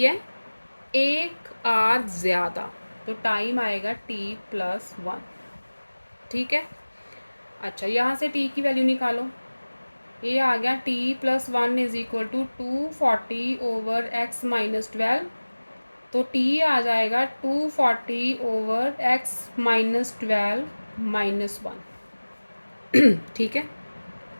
है? 1 आवर ज़्यादा, तो टाइम आएगा t+1। ठीक है, अच्छा यहाँ से t की वैल्यू निकालो। ये आ गया t+1 is equal to 240 over x-12। तो t आ जाएगा 240 ओवर x-12 -1। ठीक है,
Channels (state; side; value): inverted; both; correlation -1.00